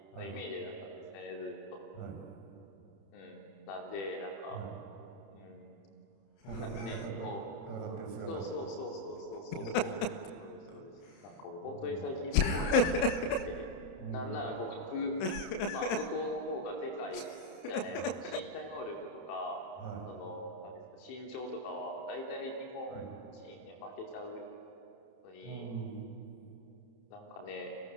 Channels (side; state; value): right; late; 31 ms